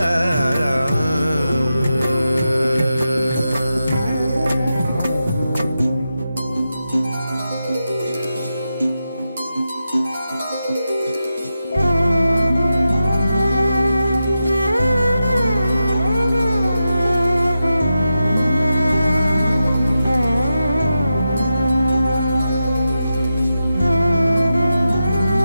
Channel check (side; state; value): both; inverted; correlation -0.90